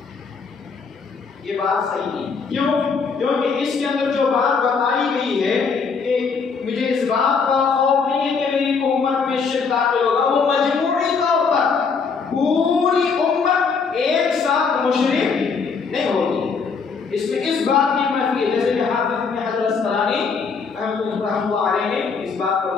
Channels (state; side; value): quieter; right; 5.3 dB